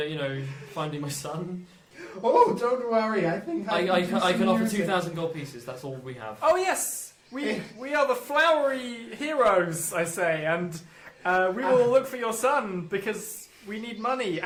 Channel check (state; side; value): identical; both; correlation 1.00